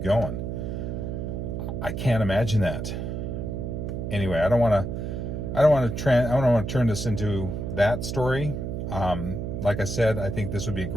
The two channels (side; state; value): right; noise; hum, 4 dB below the sound